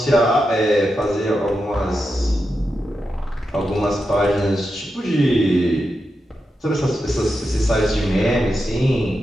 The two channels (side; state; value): both; normal; correlation 0.88